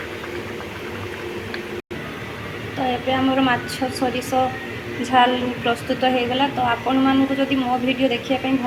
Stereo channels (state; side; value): identical; both; correlation 1.00